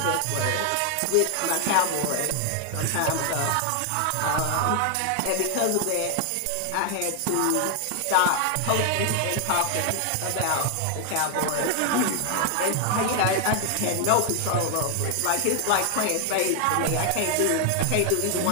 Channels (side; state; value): both; different; correlation 0.00